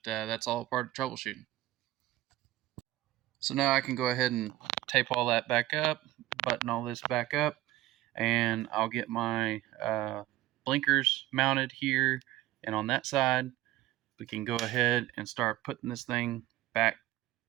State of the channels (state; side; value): quieter; left; 15.5 dB